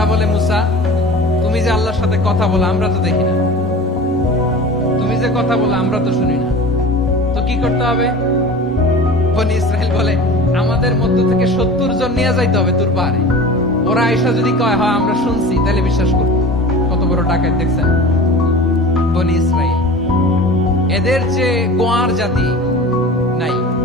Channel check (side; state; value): both; normal; correlation 0.37